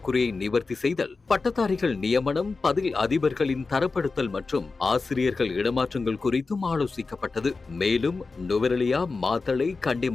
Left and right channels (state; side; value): quieter; right; 4.1 dB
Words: நிவர்த்தி செய்தல், பட்டதாரிகள் நியமனம், பதில் அதிபர்களின் தரப்படுத்தல் மற்றும் ஆசிரியர்கள் இடமாற்றங்கள் குறித்தும் ஆலோசிக்கப்பட்டது. மேலும் நுவரெலியா, மாத்தளை, கண்டி